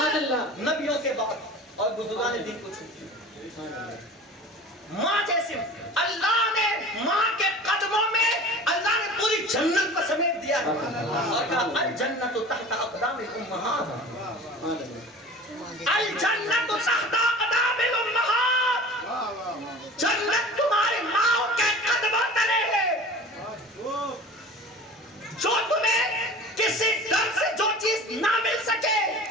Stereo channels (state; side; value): normal; both; correlation 0.39